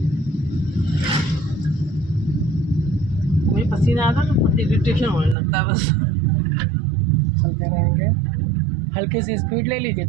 मुझे पसीना आता है तो इरिटेशन होने लगता है बस, चलते रहेंगे, हल्की सी स्पीड ले लीजिए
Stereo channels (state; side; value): drops out; left; at 5.4 s